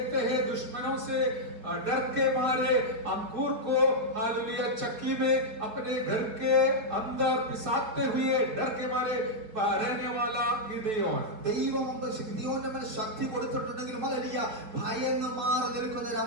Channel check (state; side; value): late; left; 4.6 ms